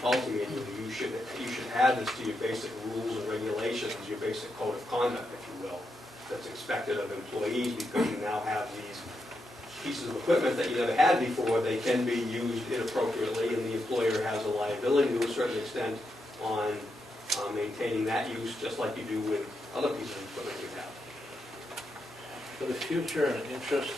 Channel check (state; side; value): normal; both; correlation 0.84